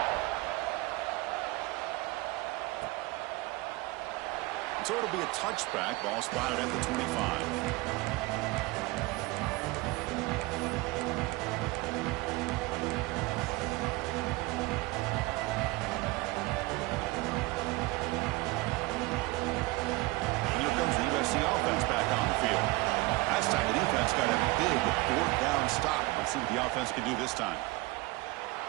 So it'll be a touchback. Ball spotted at the 25. Offense back on the field. Last time the defense got a big fourth down stop. Let's see what the offense can do this time.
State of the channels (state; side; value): quieter; left; 22.0 dB